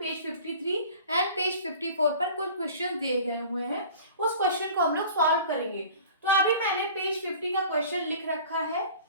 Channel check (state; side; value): inverted; both; correlation -0.44